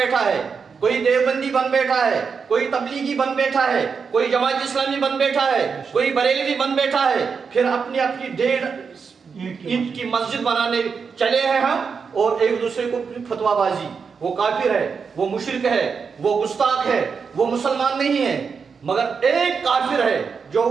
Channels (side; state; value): left; quieter; 5.7 dB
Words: ہے، کوئی دیوبندی بن بیٹھا ہے، کوئی تبلیغی بن بیٹھا ہے، کوئی جماعت اسلامی بن بیٹھا ہے، کوئی بریلوی بن بیٹھا ہے، پھر اپنی 1.5 اینٹ کی مسجد بنانے چلے ہیں ہم، اور ایک دوسرے کو فتویٰ بازی۔ وہ کافر ہے، وہ مشرک ہے، وہ گستاخ ہے، وہ مسلمان نہیں ہے۔ مگر ایک کافر ہے جو